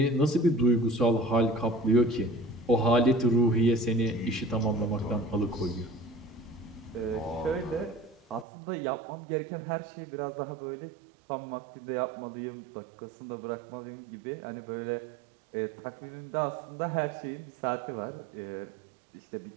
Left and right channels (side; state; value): left; drops out; at 8.5 s